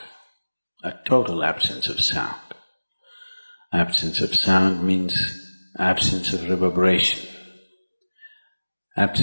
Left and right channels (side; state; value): both; inverted; correlation -1.00